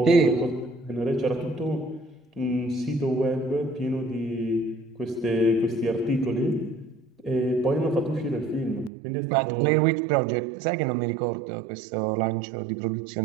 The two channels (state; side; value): drops out; left; at 8.9 s